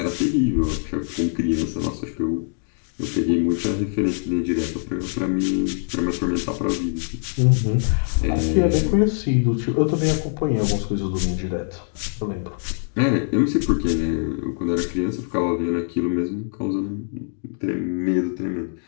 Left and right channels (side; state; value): right; silent; digital silence